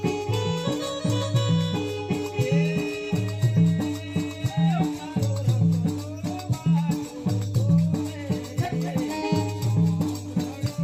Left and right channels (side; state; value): both; identical; correlation 1.00